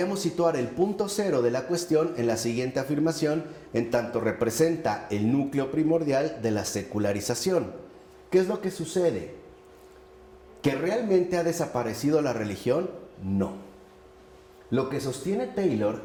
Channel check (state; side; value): identical; both; correlation 1.00